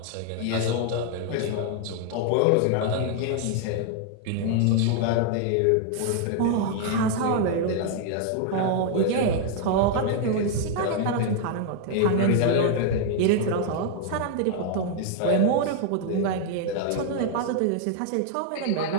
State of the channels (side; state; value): both; different; correlation 0.00